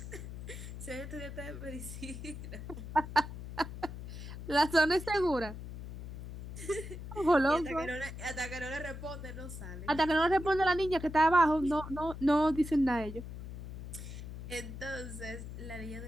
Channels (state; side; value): noise; left; hum, 10 dB below the sound